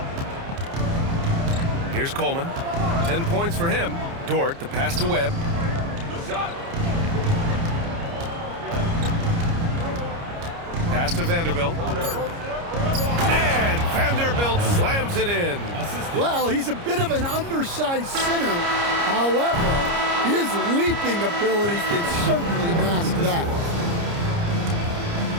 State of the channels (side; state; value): left; late; 29 ms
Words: Here's Coleman. 10 points for him. Dort, the pass to Webb. Pass to Vanderbilt. And Vanderbilt slams it in. Well, he's a bit of an undersized center. However, his leaping ability can certainly mask that.